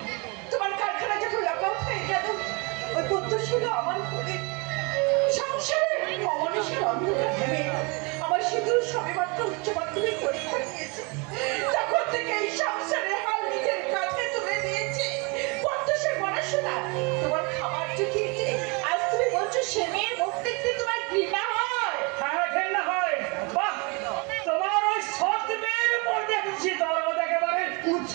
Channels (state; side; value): quieter; left; 30.4 dB